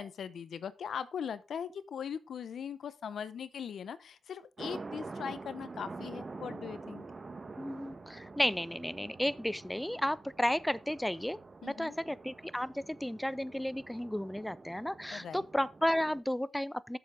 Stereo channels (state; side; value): normal; both; correlation 0.96